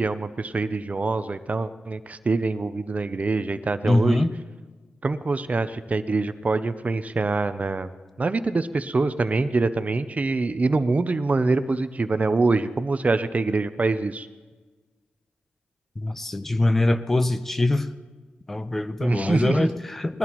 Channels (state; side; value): normal; both; correlation 0.93